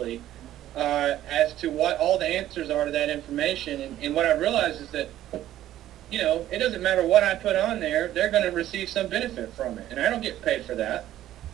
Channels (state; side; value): quieter; left; 13.1 dB